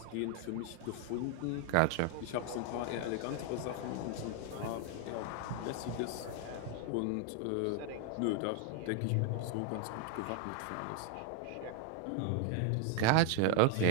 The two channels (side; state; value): both; different; correlation 0.00